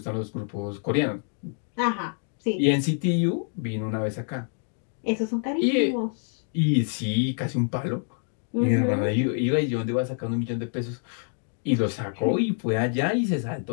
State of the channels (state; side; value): silent; right; 60 dB below the other